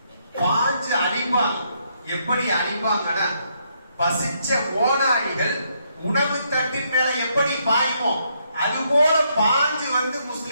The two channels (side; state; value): both; inverted; correlation -0.75